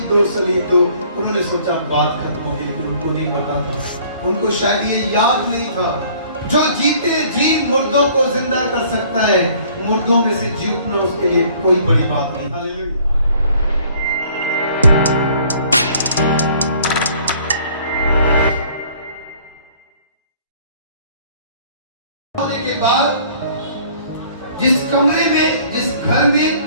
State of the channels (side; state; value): both; inverted; correlation -0.56